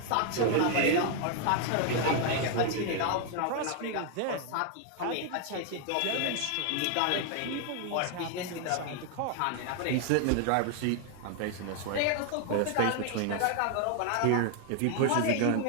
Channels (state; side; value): different; both; correlation 0.00